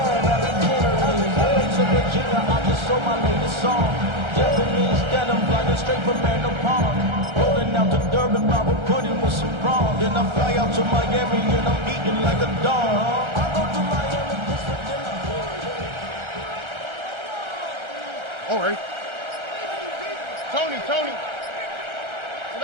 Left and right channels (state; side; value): late; left; 1.3 ms